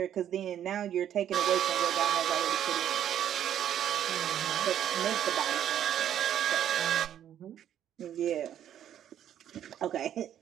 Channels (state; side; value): quieter; left; 10.4 dB